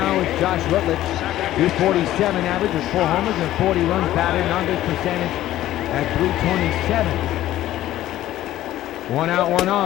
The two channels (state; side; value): quieter; right; 14.0 dB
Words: is Josh Rutledge. 247 average with 4 homers and 40 runs batted, and on-base percentage at .327. 1 out, 1